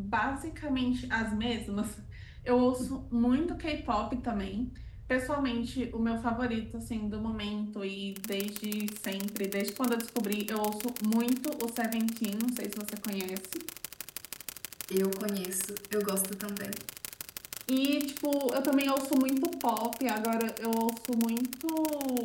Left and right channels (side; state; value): both; identical; correlation 1.00